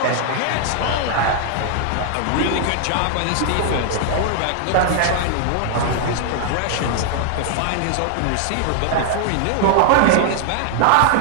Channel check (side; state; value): both; different; correlation 0.00